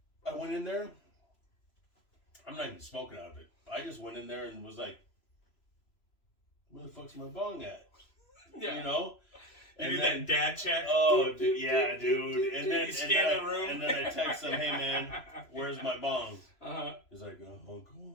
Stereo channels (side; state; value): right; late; 3.0 ms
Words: I went in there. I'm not even smoking out of it. I just went in there and was like, where the fuck's my bong at? Yeah. You know? You do that dad check. Oh, yeah, dude. And then, You scan the room. and then I text him, hey, man, where's my bong? Uh-huh. He's like, Uncle,